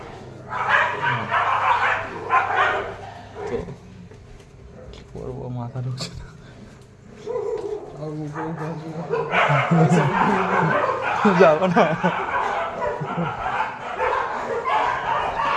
তো কি করবো, মাথা ঢুকছে না। যাবো না,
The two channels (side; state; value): both; identical; correlation 1.00